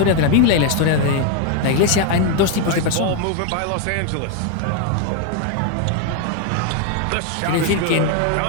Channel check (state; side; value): different; both; correlation 0.01